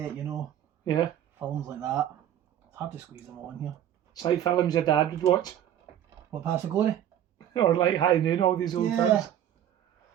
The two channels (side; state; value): left; quieter; 10.9 dB